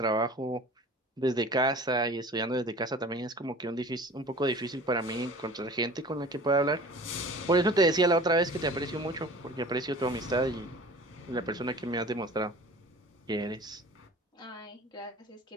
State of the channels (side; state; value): both; normal; correlation 0.43